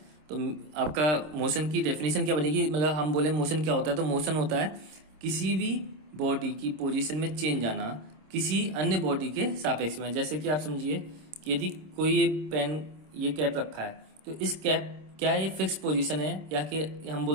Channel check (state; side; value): late; left; 26 ms